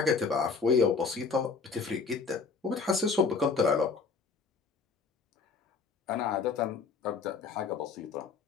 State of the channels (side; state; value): right; quieter; 5.0 dB